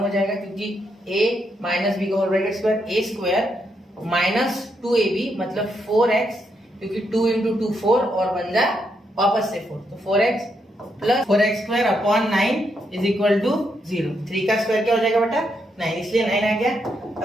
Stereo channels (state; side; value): normal; both; correlation 0.79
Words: हो जाएगा, क्योंकि a माइनस b का whole bracket square, a square minus 2ab मतलब 4x, क्योंकि 2 इंटू 2 4 और बन जाए वापस से 4, तो 4x plus 4x² upon 9 is equal to 0। 3 का स्क्वायर क्या हो जाएगा बेटा 9, इसलिए 9 आ गया।